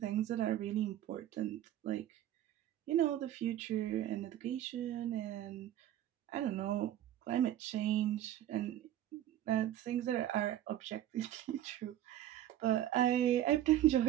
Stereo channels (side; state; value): left; quieter; 12.3 dB